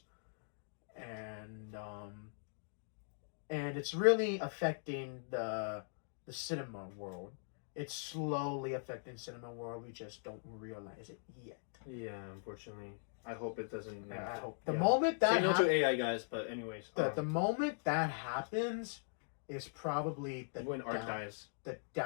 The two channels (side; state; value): right; silent; digital silence